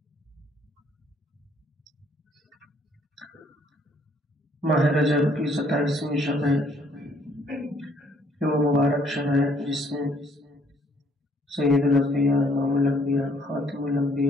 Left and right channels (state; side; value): normal; both; correlation 0.64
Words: ماہ رجب کی 27ویں شب ہے، یہ وہ مبارک شب ہے جس میں سید الانبیاء، امام الانبیاء، خاتم